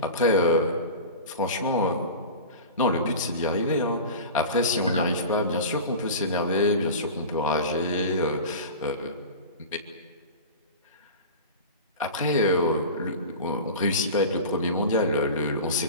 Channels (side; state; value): both; inverted; correlation -0.32